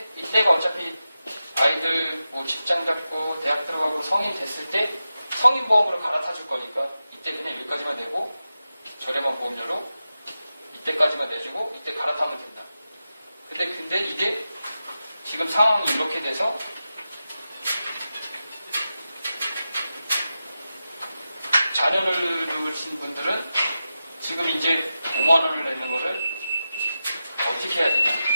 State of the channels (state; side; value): inverted; both; correlation -0.92